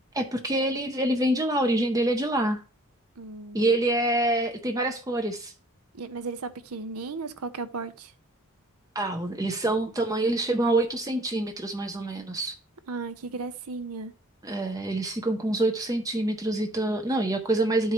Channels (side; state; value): both; normal; correlation 0.56